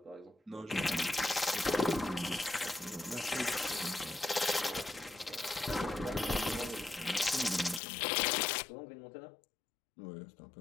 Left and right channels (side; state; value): right; drops out; at 7.8 s